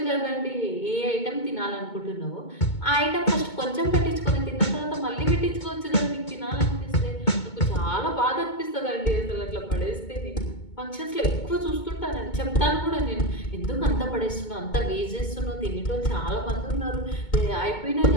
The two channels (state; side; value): late; right; 2.2 ms